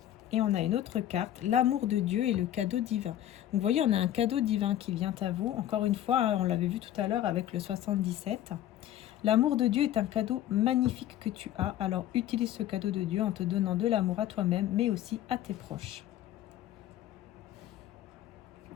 Et on a une autre carte, l'amour de Dieu et le cadeau divin. Donc vous voyez, on a un cadeau divin qui vient à vous. Encore une fois, on l'avait vu tout à l'heure avec le 77. L'amour de Dieu est un cadeau magnifique que tu as. Alors utilise ce cadeau de Dieu en te donnant de l'amour à toi-même, mais aussi à tes proches.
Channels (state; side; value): quieter; right; 12.3 dB